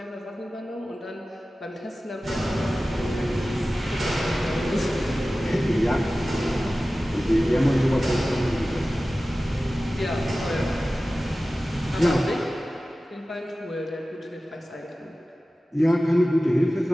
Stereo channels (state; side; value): normal; both; correlation 0.96